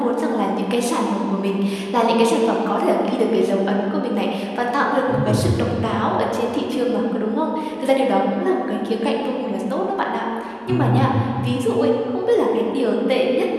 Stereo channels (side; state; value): both; identical; correlation 1.00